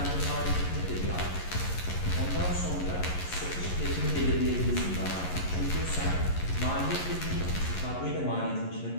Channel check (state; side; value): late; right; 11 ms